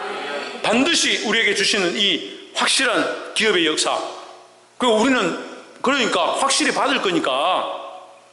반드시 우리에게 주시는 이 확실한 기업의 역사. 그리고 우리는 그러니까 확실히 받을 거니까.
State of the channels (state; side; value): identical; both; correlation 1.00